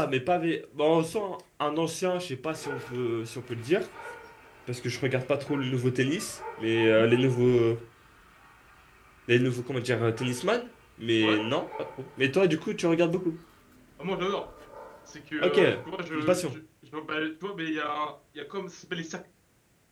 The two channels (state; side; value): identical; both; correlation 1.00